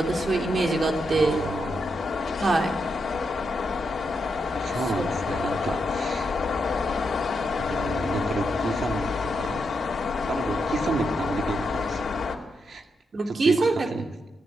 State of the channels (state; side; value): normal; both; correlation 0.83